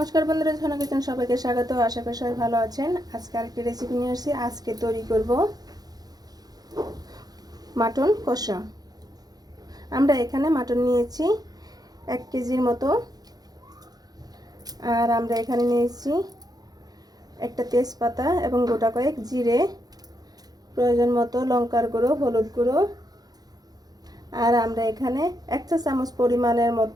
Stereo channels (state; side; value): late; left; 0.19 ms